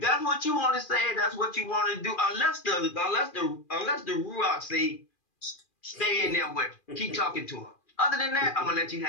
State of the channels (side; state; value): right; late; 2.4 ms